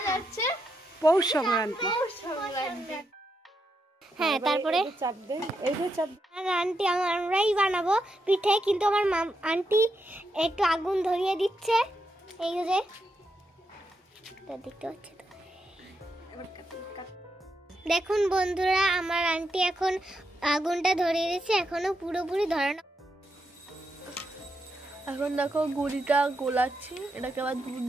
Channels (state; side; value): normal; both; correlation 0.83